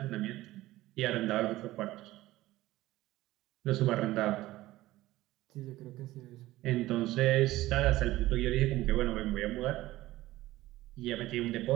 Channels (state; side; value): quieter; left; 16.8 dB